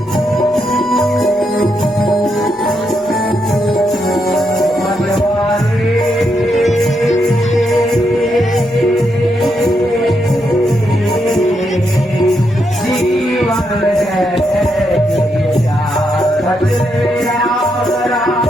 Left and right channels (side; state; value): both; normal; correlation 0.80